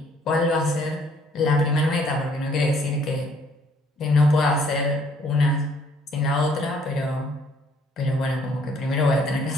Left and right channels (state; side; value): normal; both; correlation 0.63